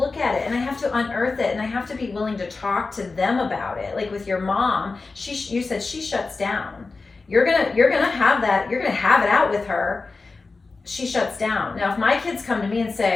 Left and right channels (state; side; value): quieter; right; 3.9 dB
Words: at it, and I have to unearth it, and I have to be willing to talk to them about it. Like with your mom, you said she shuts down. You're gonna have that. You're gonna have it out with her. She shuts down. Now, if my kids come to me and